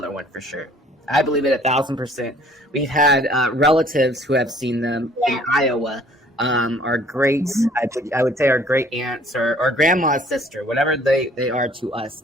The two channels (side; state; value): both; normal; correlation 0.56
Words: one for sure. I believe it 1,000%. We've had relatives who have seen them in Iowa. Our great, I would say our great aunts or grandma's sister, whatever they are to